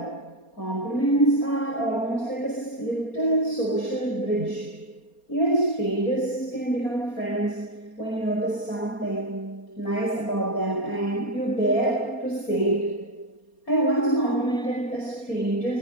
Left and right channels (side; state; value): right; late; 4.3 ms